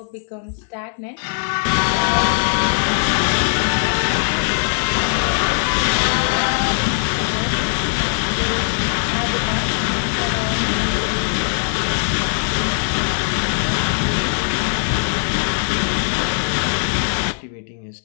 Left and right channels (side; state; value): right; silent; digital silence